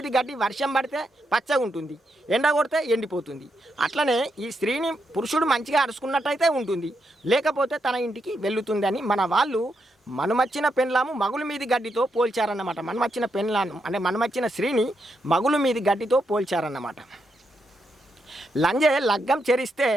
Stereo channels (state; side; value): normal; both; correlation 0.82